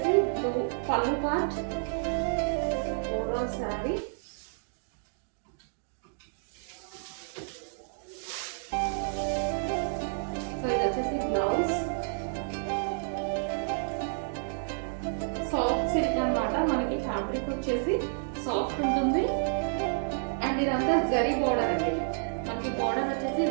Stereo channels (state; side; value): silent; left; digital silence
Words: బ్లూ పళ్ళు పార్ట్, ఓవరాల్ శారీ. సో ఇది వచ్చేసి బ్లౌజ్. సాఫ్ట్ సిల్క్ అనమాట, మనకి ఫ్యాబ్రిక్ వచ్చేసి సాఫ్ట్ ఉంటుంది. అండ్ ఇదంతా జరీ బోర్డర్ అండి, మనకి బోర్డర్ వచ్చేసి